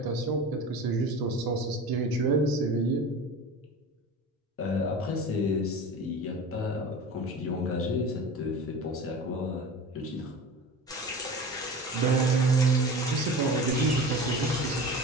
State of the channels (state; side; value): normal; both; correlation 0.34